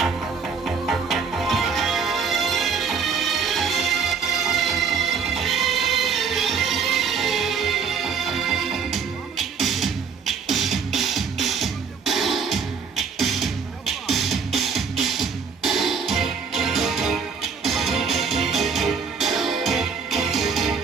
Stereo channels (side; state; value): left; quieter; 5.8 dB